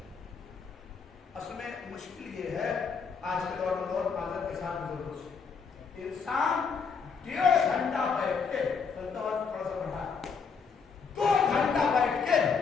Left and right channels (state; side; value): quieter; right; 5.6 dB